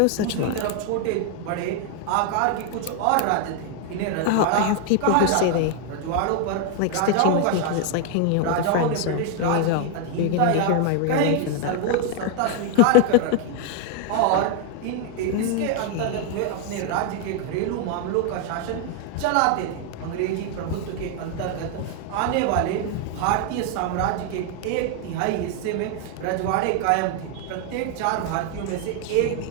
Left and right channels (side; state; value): both; different; correlation 0.00